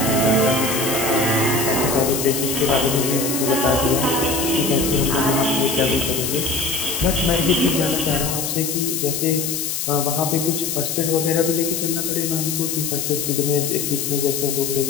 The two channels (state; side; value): noise; left; hiss, 2 dB below the sound